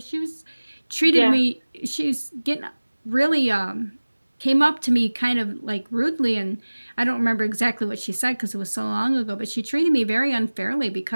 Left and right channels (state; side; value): inverted; both; correlation -1.00